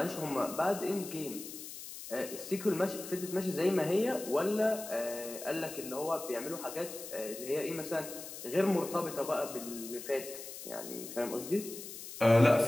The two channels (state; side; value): noise; left; hiss, 11 dB below the sound